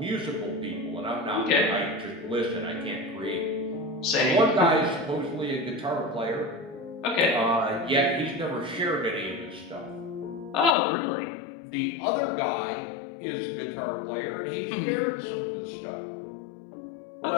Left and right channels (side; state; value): right; drops out; at 10.8 s